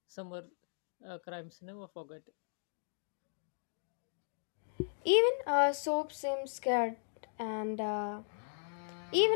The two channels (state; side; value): silent; right; digital silence